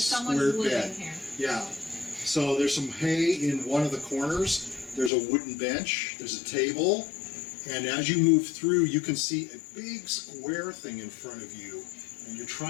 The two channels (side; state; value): right; drops out; at 5.1 s